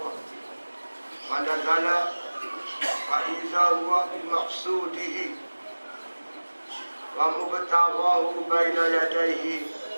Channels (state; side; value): inverted; both; correlation -1.00